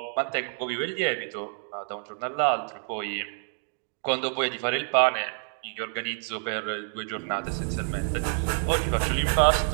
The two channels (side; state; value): left; silent; 59 dB below the other